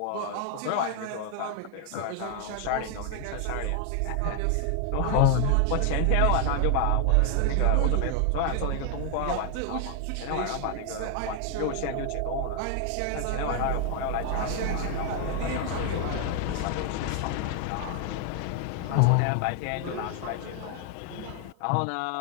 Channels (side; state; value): both; different; correlation 0.00